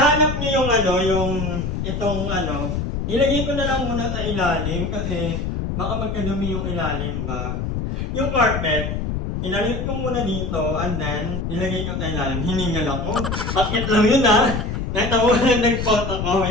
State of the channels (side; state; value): left; noise; rumble, 3 dB below the sound